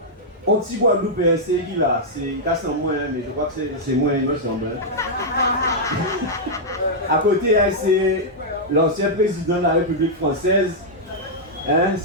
un petit Guadeloupéen, c'est qui là? C'est moins, mais je crois que c'est moins, il me semble. À côté, c'est l'ancien président de la République française.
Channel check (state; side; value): normal; both; correlation -0.06